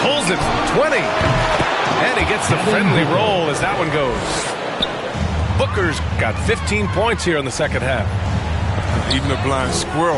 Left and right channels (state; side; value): identical; both; correlation 1.00